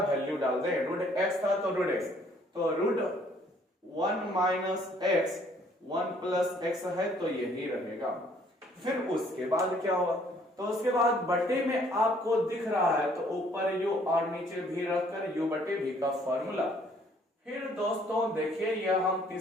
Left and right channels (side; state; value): both; normal; correlation 0.62